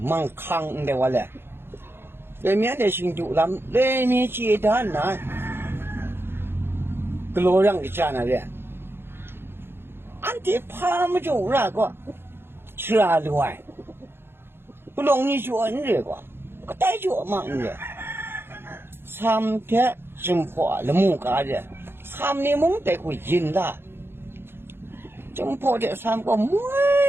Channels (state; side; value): late; left; 0.11 ms